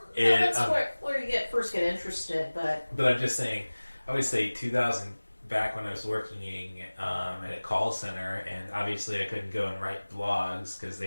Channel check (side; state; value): both; inverted; correlation -1.00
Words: that's where you first get interested, but I'm just saying, I would say 2000, back when I was working at a call center, and obviously I couldn't go and write blogs because